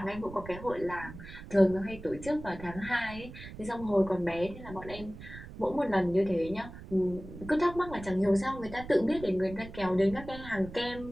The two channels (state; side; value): noise; right; rumble, 14 dB below the sound